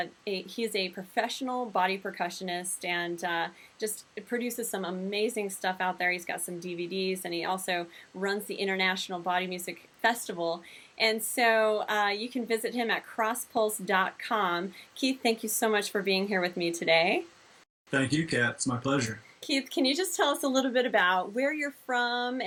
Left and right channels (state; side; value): identical; both; correlation 1.00